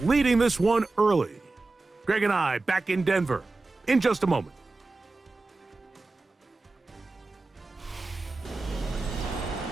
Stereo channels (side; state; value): left; quieter; 3.4 dB